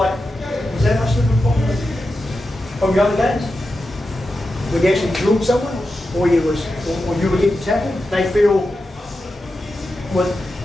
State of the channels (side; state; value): both; normal; correlation 0.90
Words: that much different from that? from your other games? When you actually drilled someone, or you were getting tackled, they feel,